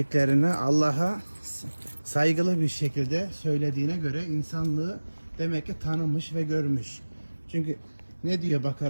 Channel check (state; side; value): inverted; both; correlation -1.00